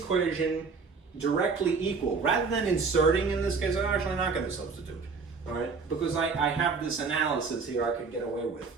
directly equal. Rather than inserting in this case, I'm actually not going to substitute. All right, because I have this analysis here I could get away with.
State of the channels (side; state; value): left; quieter; 4.8 dB